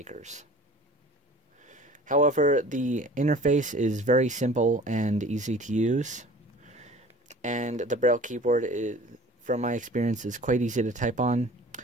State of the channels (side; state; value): both; normal; correlation 0.45